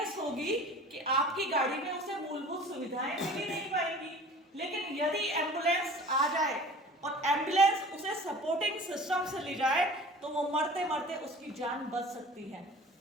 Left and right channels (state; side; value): normal; both; correlation 0.43